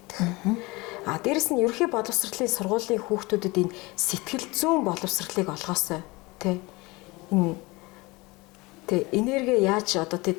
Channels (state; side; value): quieter; right; 23.6 dB